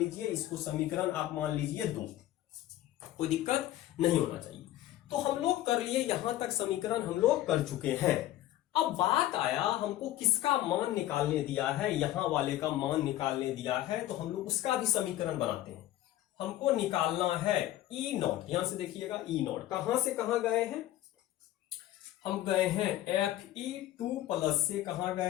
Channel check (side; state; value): right; quieter; 14.2 dB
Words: इसको समीकरण आप मान लीजिए 2। कोई दिक्कत नहीं होना चाहिए। तो हम लोग कर लिए, यहां तक समीकरण हम लोग कर चुके हैं। अब बात आया हमको किसका मान निकालने दिया है, यहां वाले का मान निकालने दिया है, तो हम लोग उसका भी समीकरण बनाते हैं। हमको निकालना है ई नॉट। यहां से देखिएगा ई नॉट कहां से कहां गए हैं, हम गए हैं Fe2 प्लस से कहां